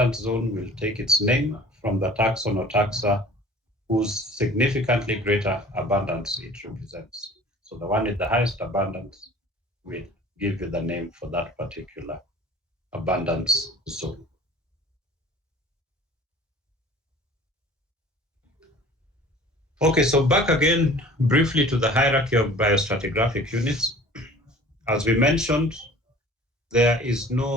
zone will take its name from the taxon or taxa whose significantly greater abundance it represents. So the one with the highest abundance will give you the name for that particular abundance zone. Okay, so back again briefly to the hierarchy of biostratigraphic units. As we mentioned, there is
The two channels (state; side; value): normal; both; correlation 0.46